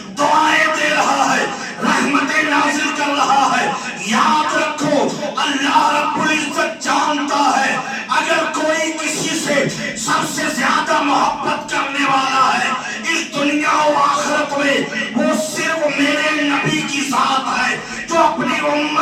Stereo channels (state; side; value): identical; both; correlation 1.00